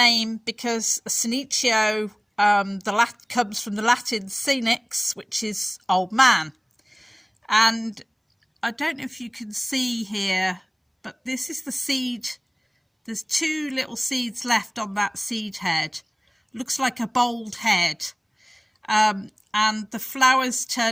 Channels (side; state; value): both; identical; correlation 1.00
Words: because Senecio comes from the Latin senex, which is old man. And I don't know if you can see here, but this is the seed. There's two little seeds left on that seed head. Looks like a bald head. And the flowers